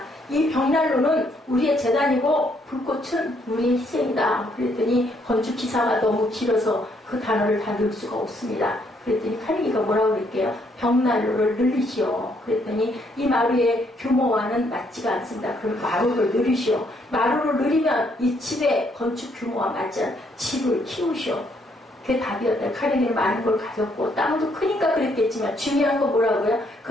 이 벽난로는 우리의 재단이고 불꽃은 우리의 희생이다. 그랬더니 건축기사가 너무 길어서 그 단어를 다 넣을 수가 없습니다. 그랬더니 카네기가 뭐라고 그럴게요? 벽난로를 늘리시오. 그랬더니 이 마루의 규모와는 맞지가 않습니다. 그럼 마루를 늘리시오. 마루를 늘리면 이 집의 건축 규모와 맞지 않은 집을 키우시오. 그게 답이었다. 카네기는 많은 걸 가졌고 땅도 크니까 그랬겠지만 중요한 건 뭐라고요?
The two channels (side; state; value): both; normal; correlation 0.70